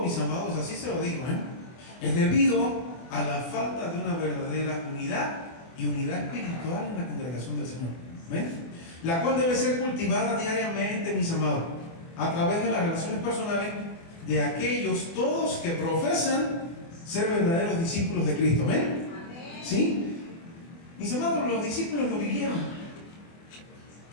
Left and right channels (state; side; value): late; right; 24 ms